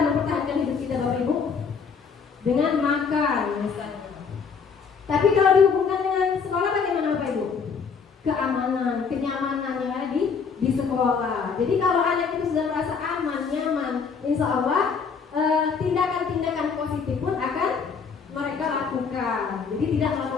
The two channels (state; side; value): quieter; right; 5.8 dB